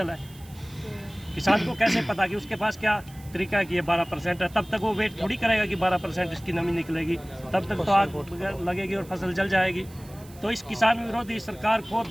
है? किसान को कैसे पता कि उसके पास क्या तरीका है कि ये 12% है? तब तक वो वेट थोड़ी करेगा कि 12% इसकी नमी निकलेगी, तब तक तो आग लगेगी और फसल जल जाएगी। तो इस किसान विरोधी सरकार को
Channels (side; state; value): right; noise; hiss, 23 dB below the sound